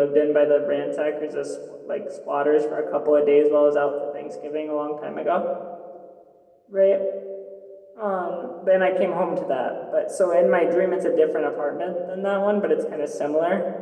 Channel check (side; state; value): both; identical; correlation 1.00